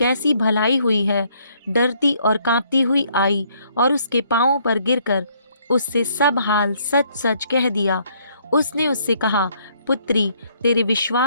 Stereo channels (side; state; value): both; inverted; correlation -0.67